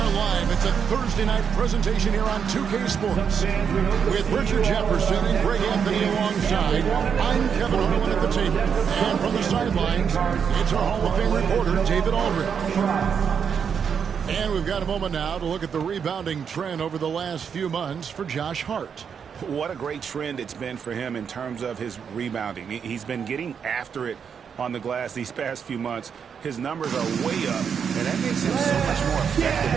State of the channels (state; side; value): quieter; left; 7.0 dB